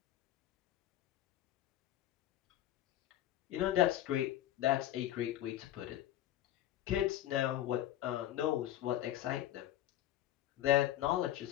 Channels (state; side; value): quieter; right; 13.2 dB